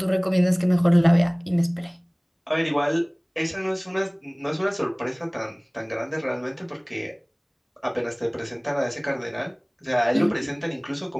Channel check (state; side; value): identical; both; correlation 1.00